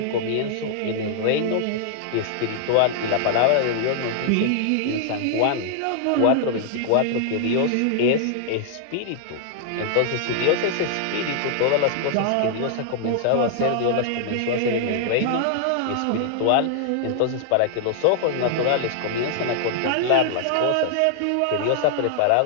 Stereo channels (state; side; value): different; both; correlation -0.01